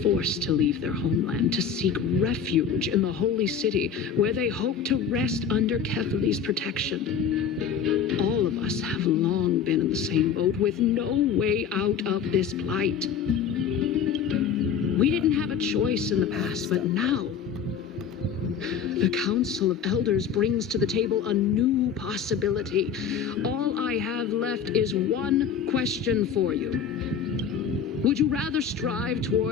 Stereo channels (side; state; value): right; quieter; 7.1 dB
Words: forced to leave their homeland to seek refuge in the holy city, where they hope to rest under Kefali's protection. All of us have long been in the same boat, with no way out of this plight. We didn't have a choice in the past, but now the Council of Elders brings to the table a new possibility. All I have left is one question for you. Would you rather strive